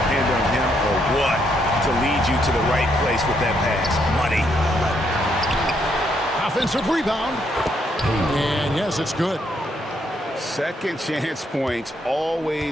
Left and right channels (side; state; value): both; normal; correlation 0.74